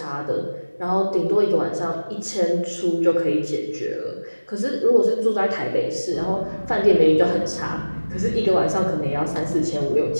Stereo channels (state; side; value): inverted; both; correlation -1.00